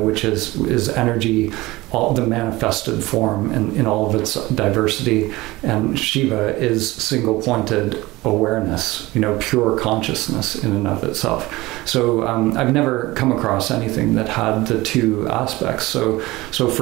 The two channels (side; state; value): left; quieter; 20.0 dB